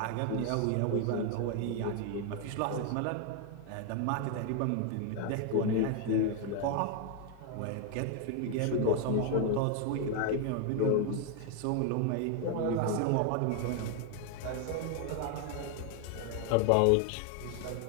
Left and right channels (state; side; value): different; both; correlation 0.01